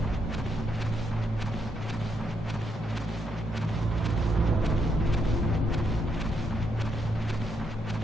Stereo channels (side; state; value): both; normal; correlation 0.78